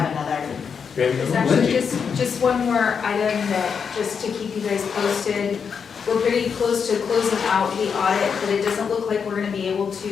Actually, just one more item that, just to keep you guys posted. We're pretty close to closing out the audit, but it doesn't look like we're gonna be able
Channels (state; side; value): quieter; right; 6.4 dB